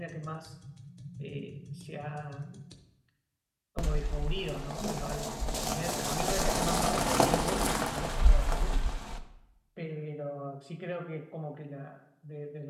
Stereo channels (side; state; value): both; identical; correlation 1.00